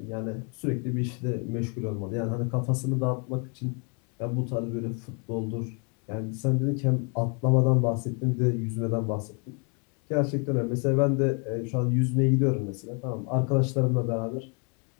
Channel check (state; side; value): quieter; right; 36.8 dB